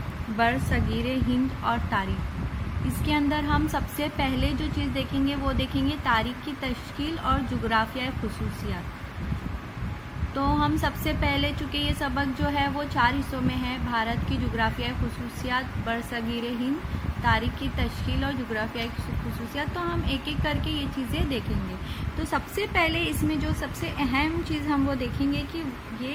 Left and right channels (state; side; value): identical; both; correlation 1.00